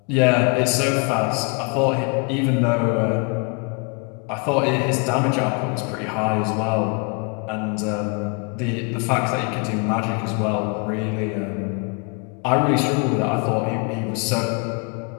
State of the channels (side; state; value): right; quieter; 34.9 dB